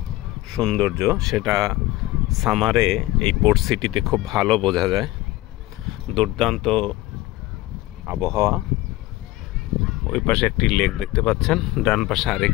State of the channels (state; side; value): quieter; right; 17.7 dB